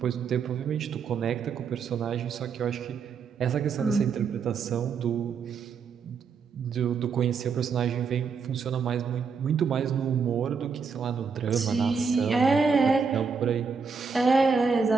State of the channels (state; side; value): quieter; left; 5.6 dB